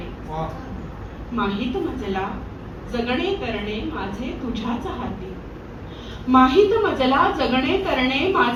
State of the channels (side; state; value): both; identical; correlation 1.00